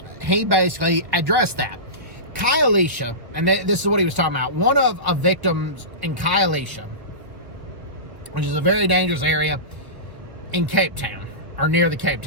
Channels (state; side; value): late; left; 1.3 ms